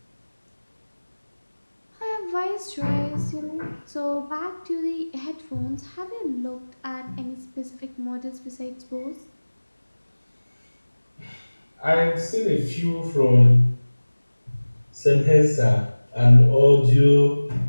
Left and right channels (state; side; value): inverted; both; correlation -1.00